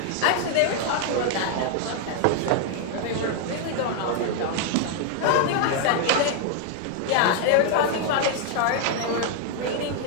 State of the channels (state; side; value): different; both; correlation 0.00